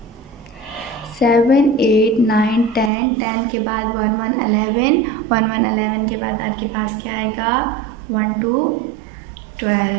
7 8 9 10। 10 के बाद 1 1 11। 1 1 11 के बाद आपके पास क्या आएगा? 1 2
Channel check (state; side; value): drops out; left; at 2.9 s